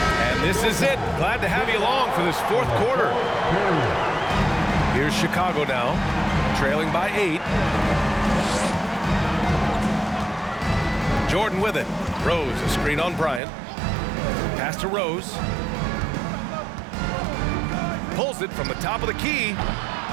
And this is it. Glad to have you along for this fourth quarter. Here's Chicago now, trailing by 8. Jordan with it. Rose, a screen on Bryant. Pass to Rose. Pulls it from the top of the key.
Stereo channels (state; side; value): drops out; left; at 13.4 s